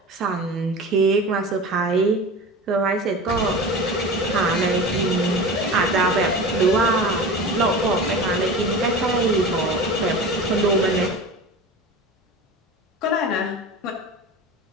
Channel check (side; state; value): both; normal; correlation 0.32